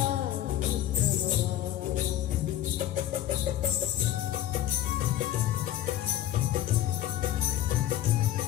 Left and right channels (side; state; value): right; quieter; 13.0 dB